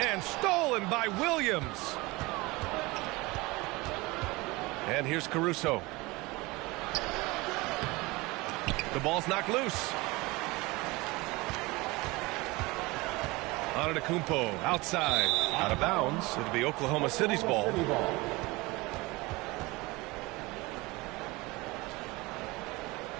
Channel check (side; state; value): left; quieter; 22.9 dB